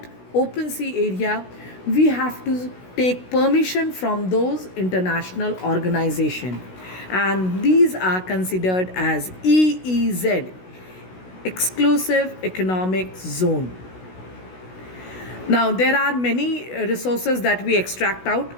open sea area, we have to take permission from those international organization, and these are considered as EEZ, exclusive economic zone. Now, there are many resources that we extract out,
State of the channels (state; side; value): late; right; 16 ms